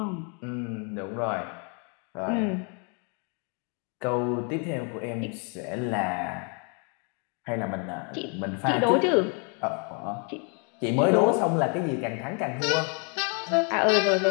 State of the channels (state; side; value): quieter; right; 37.4 dB